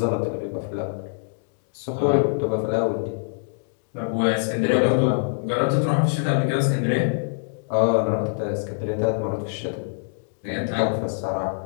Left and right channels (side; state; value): right; silent; digital silence